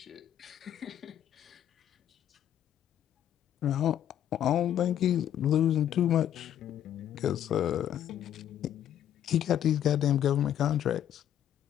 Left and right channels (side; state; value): right; quieter; 10.6 dB